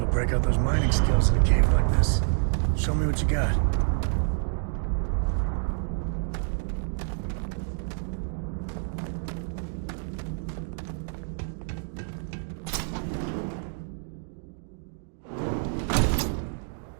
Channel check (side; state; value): left; silent; digital silence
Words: to break out those mining skills in a cave like this. Show me what you got.